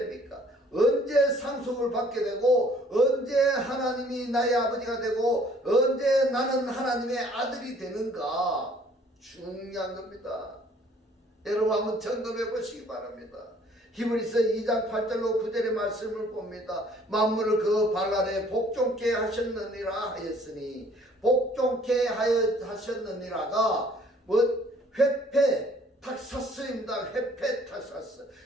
언제 상속을 받게 되고 언제 하나님이 나의 아버지가 되고 언제 나는 하나님의 아들이 되는가 중요한 겁니다. 여러분 한번 점검해 보시기 바랍니다. 히브리서 2장 8절로 9절의 말씀을 봅니다. 만물을 그 발 아래 복종케 하셨느니라 하였으니 복종케 하셨느니라가 회패 탁사스입니다. 회패 탁사스.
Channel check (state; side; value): normal; both; correlation 0.58